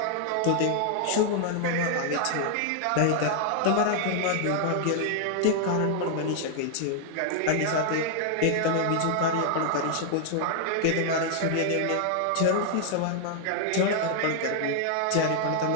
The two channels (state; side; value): different; both; correlation 0.00